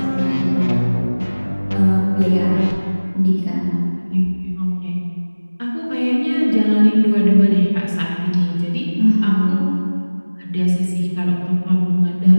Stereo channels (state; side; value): inverted; both; correlation -1.00